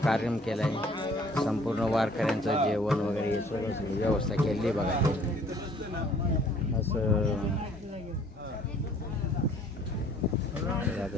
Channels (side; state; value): both; normal; correlation 0.57